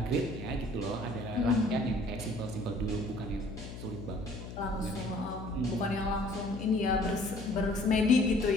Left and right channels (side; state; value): left; noise; hum, 11 dB below the sound